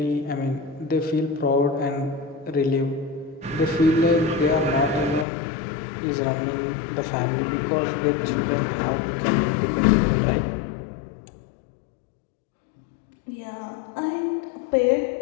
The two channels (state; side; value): drops out; right; at 5.2 s